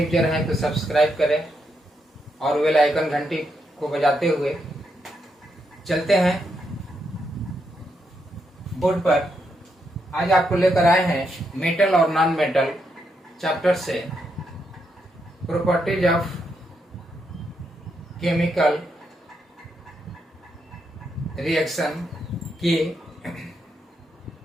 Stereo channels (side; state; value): both; normal; correlation 0.80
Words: हैं तो सब्सक्राइब करें और बेल आइकन घंटी को बजाते हुए चलते हैं बोर्ड पर। आज आपको लेकर आए हैं मेटल और नॉन मेटल चैप्टर से प्रॉपर्टीज ऑफ केमिकल रिएक्शन के